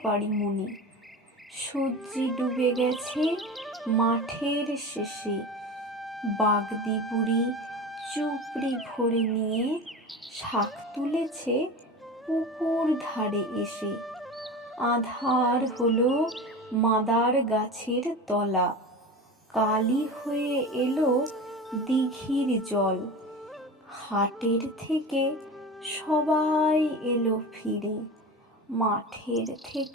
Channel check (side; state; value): both; normal; correlation 0.30